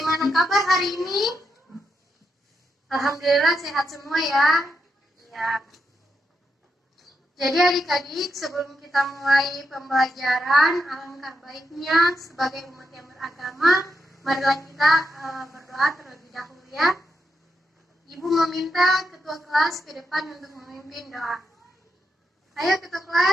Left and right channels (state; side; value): normal; both; correlation 0.84